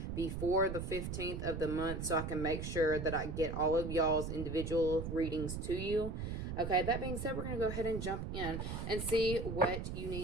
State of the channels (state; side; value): noise; right; rumble, 5 dB below the sound